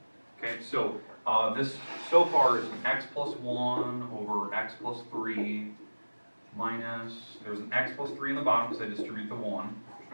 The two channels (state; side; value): inverted; both; correlation -1.00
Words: Okay? So this so far is x plus 1 over x plus 3 minus, there's an x plus 3 in the bottom because I distribute the 1. There's